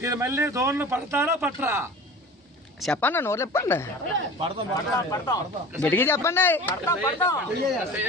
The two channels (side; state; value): both; normal; correlation 0.38